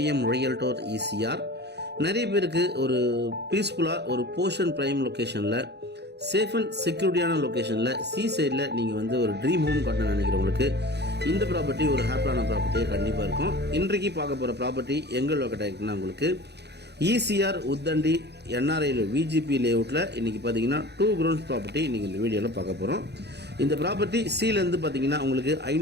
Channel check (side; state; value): left; late; 0.49 ms